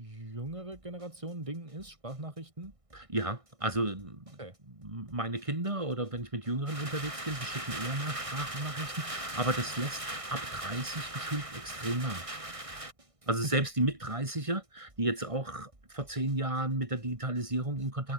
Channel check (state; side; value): late; left; 1.6 ms